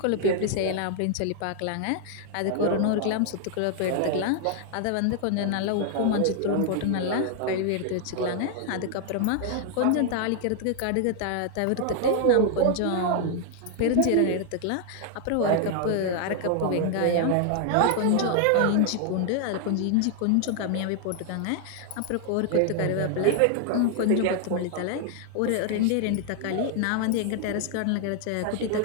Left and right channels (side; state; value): both; different; correlation 0.00